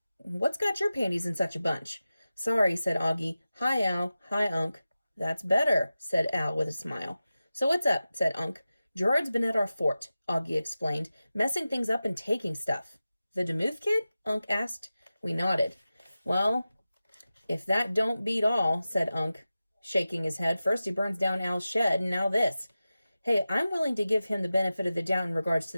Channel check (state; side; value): inverted; both; correlation -0.94